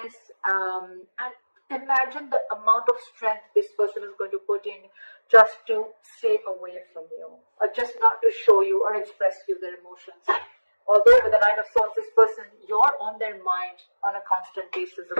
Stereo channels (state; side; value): inverted; both; correlation -1.00